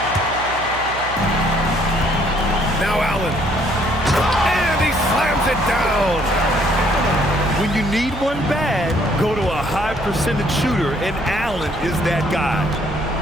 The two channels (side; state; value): right; noise; hum, 14 dB below the sound